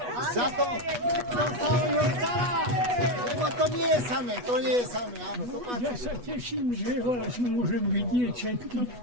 Za to, čo sa o ňo stará. Lebo to nie je samé, áno. To Ja sa teším, že vás môžem vidieť všetky,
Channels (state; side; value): late; left; 8.2 ms